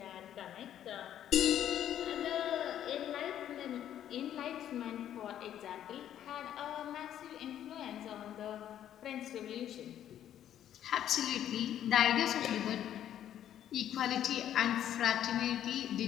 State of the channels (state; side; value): quieter; right; 10.8 dB